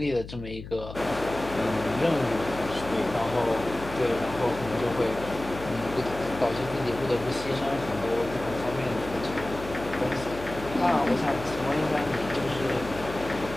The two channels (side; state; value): left; noise; hum, 12 dB below the sound